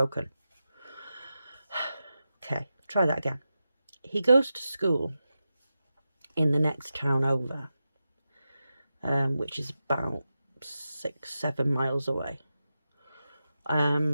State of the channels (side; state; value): both; inverted; correlation -0.91